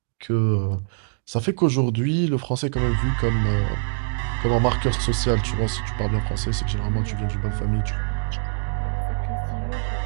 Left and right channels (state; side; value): silent; left; digital silence